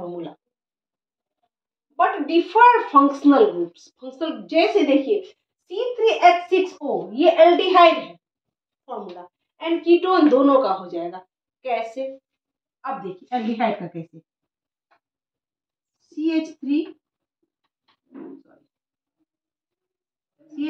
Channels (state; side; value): identical; both; correlation 1.00